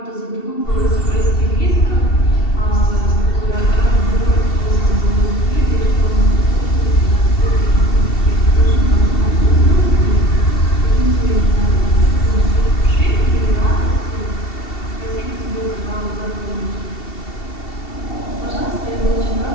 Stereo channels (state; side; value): late; right; 2.7 ms